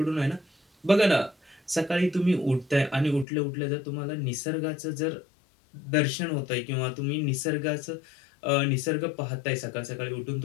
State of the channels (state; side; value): drops out; right; at 3.2 s